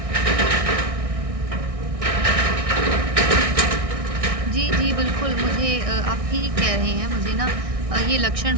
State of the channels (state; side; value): late; left; 1.6 ms